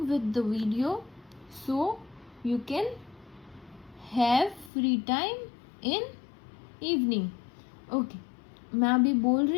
with the video so you can have free time in evening. Okay, मैं अभी बोल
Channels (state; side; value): drops out; right; at 4.7 s